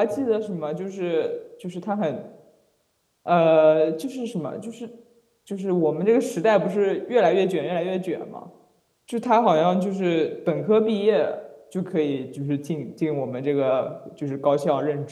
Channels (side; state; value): both; identical; correlation 1.00